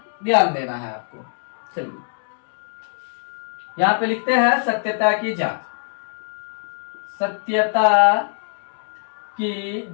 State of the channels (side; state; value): right; silent; digital silence